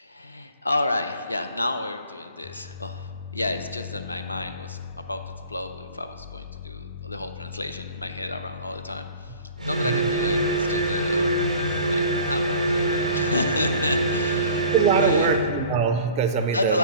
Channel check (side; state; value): both; inverted; correlation -0.44